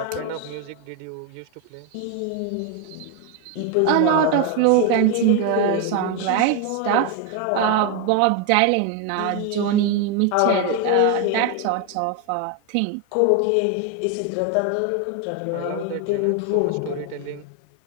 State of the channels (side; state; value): both; different; correlation 0.01